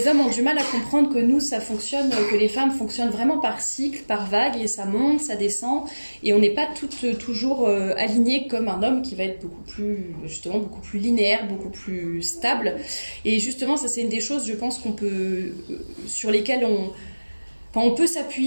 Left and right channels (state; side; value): inverted; both; correlation -1.00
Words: hommes ont du mal à comprendre que nous, ça fonctionne, que les femmes fonctionnent vraiment par cycle, par vague, et ça monte, ça descend, et on n'est pas toutes toujours alignées comme un homme qui va être beaucoup plus linéaire, beaucoup plus stable. Et justement, ça c'est une des choses, je pense sur lesquelles on peut